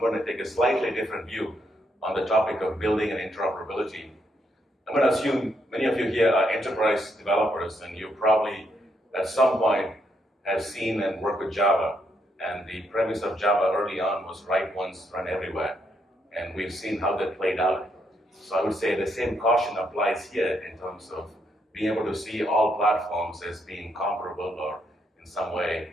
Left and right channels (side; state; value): both; normal; correlation 0.77